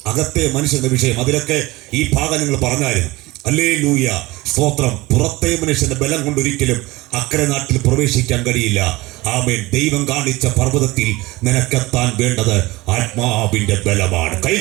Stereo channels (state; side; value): quieter; left; 20.7 dB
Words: അകത്തെ മനുഷ്യന്റെ വിഷയം. അതിലൊക്കെ ഈ ഭാഗം നിങ്ങൾ പറഞ്ഞായിരുന്നു. ഹല്ലേലൂയ. സ്തോത്രം. പുറത്തെ മനുഷ്യന്റെ ബലം കൊണ്ടൊരിക്കലും അക്കരെ നാട്ടിൽ പ്രവേശിക്കാൻ കഴിയില്ല. ആമേൻ. ദൈവം കാണിച്ച പർവ്വതത്തിൽ നിനക്കെത്താൻ വേണ്ടത് ആത്മാവിന്റെ ബലമാണ്.